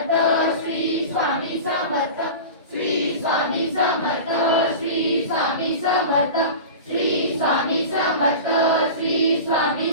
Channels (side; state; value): both; inverted; correlation -0.33